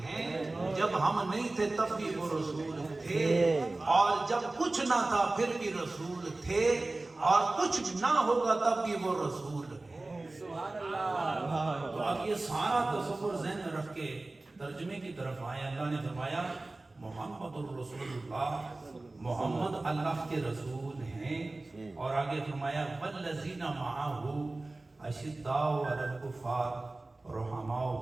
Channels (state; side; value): quieter; left; 3.0 dB